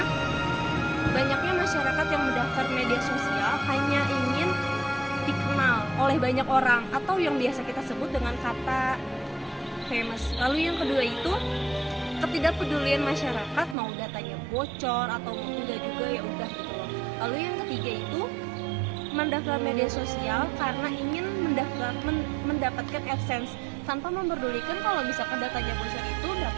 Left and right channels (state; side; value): drops out; left; at 13.8 s